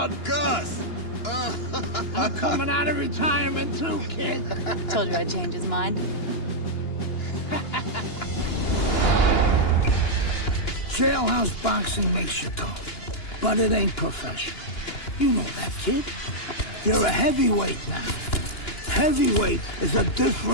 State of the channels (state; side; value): late; right; 2.9 ms